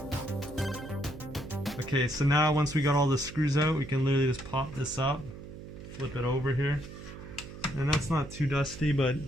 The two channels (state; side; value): noise; right; hum, 13 dB below the sound